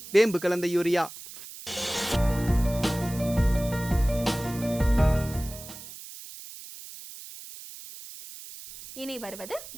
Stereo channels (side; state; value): right; noise; hiss, 14 dB below the sound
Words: வேம்பு கலந்த யூரியா. இனி வருவது